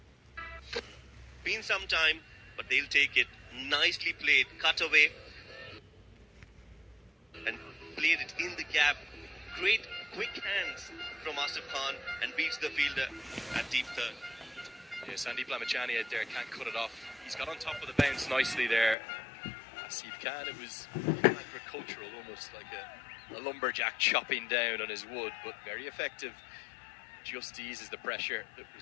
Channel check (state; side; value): drops out; right; at 18.9 s